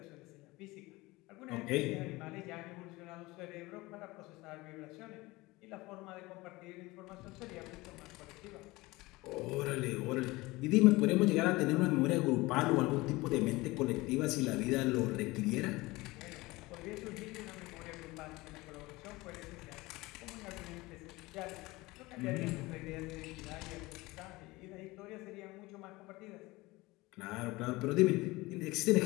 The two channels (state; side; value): quieter; right; 21.3 dB